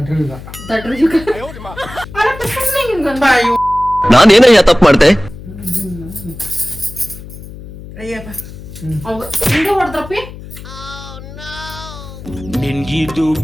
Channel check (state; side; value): noise; left; hum, 14 dB below the sound